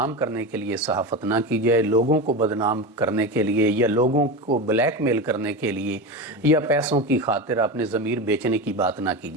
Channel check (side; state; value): both; normal; correlation 0.22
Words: کرنے کے لیے صحافت نہ کی جائے، لوگوں کو بدنام کرنے کے لیے یا لوگوں کو بلیک میل کرنے کے لیے یا پیسوں کی خاطر اپنے ضمیر بیچنے کی بات نہ کی